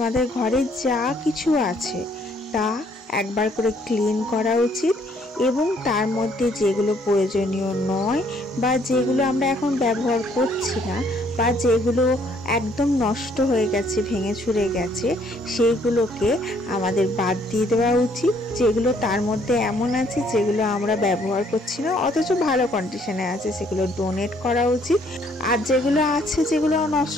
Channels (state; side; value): normal; both; correlation 0.65